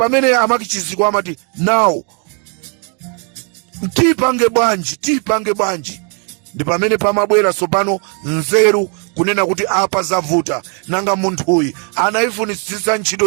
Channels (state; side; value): quieter; left; 39.7 dB